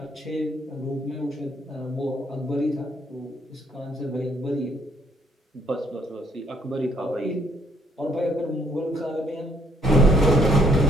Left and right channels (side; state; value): both; normal; correlation 0.68